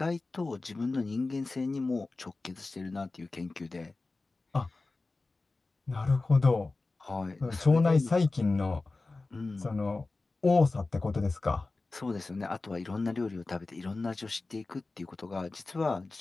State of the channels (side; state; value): right; quieter; 3.5 dB